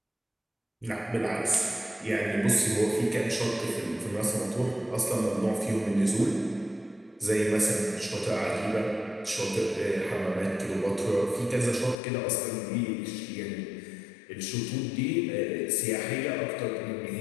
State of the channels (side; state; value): right; drops out; at 12.0 s